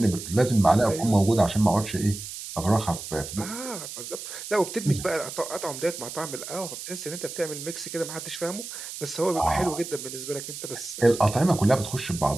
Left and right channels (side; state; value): right; noise; hiss, 10 dB below the sound